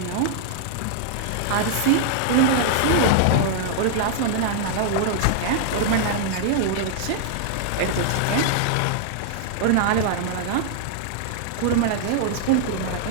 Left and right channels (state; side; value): different; both; correlation -0.01